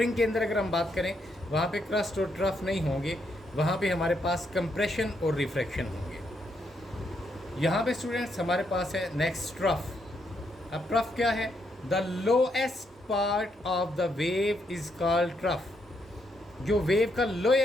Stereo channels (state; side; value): normal; both; correlation 0.77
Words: के अंदर अगर हम बात करें, वहाँ पे क्रस्ट और ट्रफ नहीं होंगे, वहाँ पे हमारे पास कंप्रेशन और रिफ्रैक्शन होंगे। यहाँ पे स्टूडेंट्स हमारे पास है नेक्स्ट ट्रफ। अब ट्रफ क्या है? The lowest part of the wave is called trough. जो वेव का